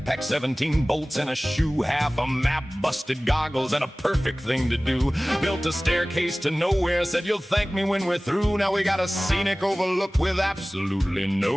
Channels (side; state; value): both; normal; correlation 0.98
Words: 17 bolts in a shoe, half a map, busted goggles, and a perfect thing to do. Built a staircase to nowhere, said you'll thank me when we're through. Now we got a scenic overlook with absolutely